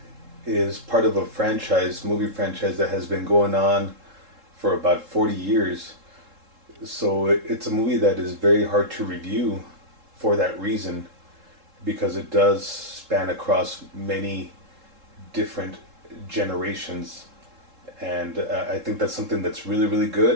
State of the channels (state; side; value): late; left; 3.7 ms